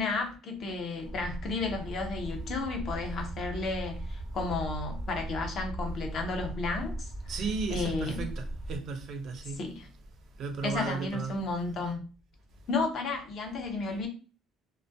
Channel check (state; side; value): normal; both; correlation 0.60